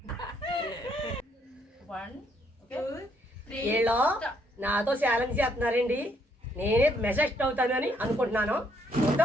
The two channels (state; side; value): normal; both; correlation 0.71